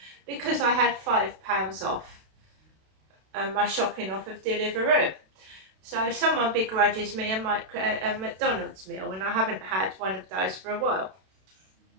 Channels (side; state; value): left; late; 32 ms